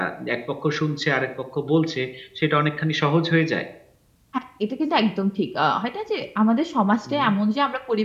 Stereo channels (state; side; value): identical; both; correlation 1.00